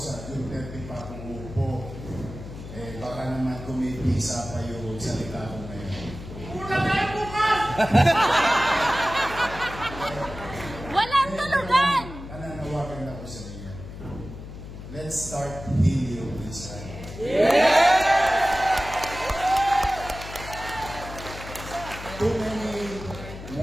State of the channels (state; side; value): noise; left; hum, 12 dB below the sound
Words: June 30 pa ako uupo, baka naman kumipisa pa yung salita ko ngayon. Una tayo bukas! Walang tulugan! Nananawagan ako sa inyo. Let's start healing this time. Too many